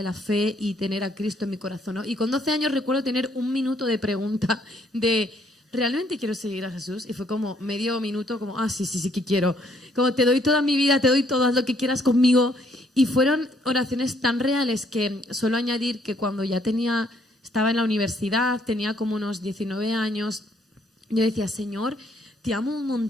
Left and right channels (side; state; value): both; normal; correlation 0.67